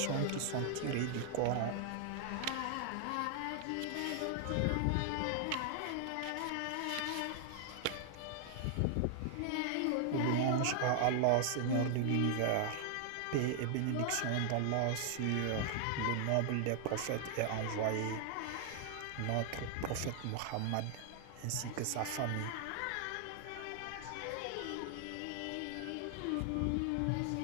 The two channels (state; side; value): different; both; correlation 0.00